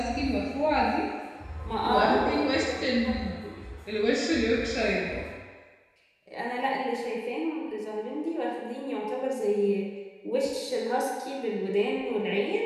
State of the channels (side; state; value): both; identical; correlation 1.00